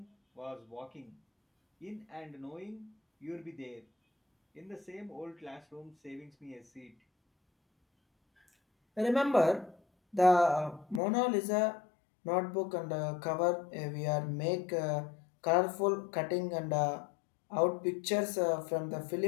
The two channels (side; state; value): right; drops out; at 11.0 s